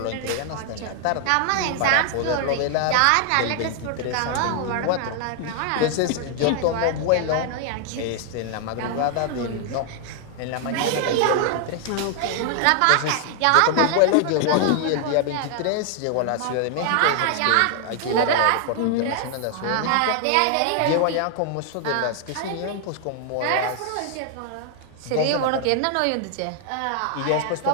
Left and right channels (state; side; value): different; both; correlation 0.00